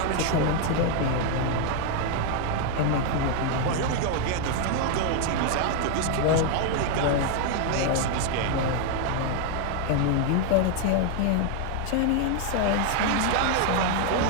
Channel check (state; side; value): different; both; correlation 0.01